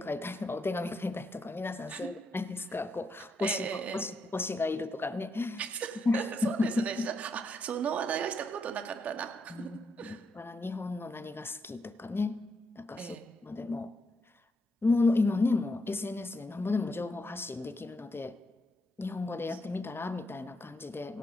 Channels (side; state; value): both; normal; correlation 0.80